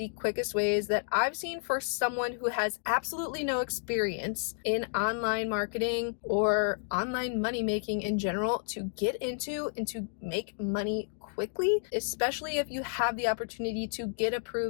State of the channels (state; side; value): silent; right; digital silence